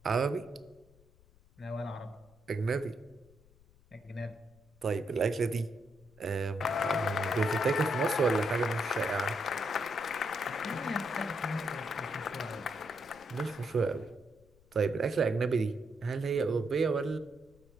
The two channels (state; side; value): noise; left; rumble, 28 dB below the sound